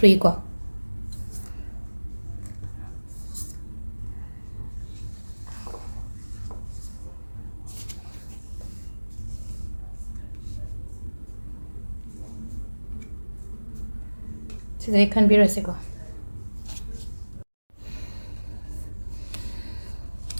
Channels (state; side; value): inverted; both; correlation -1.00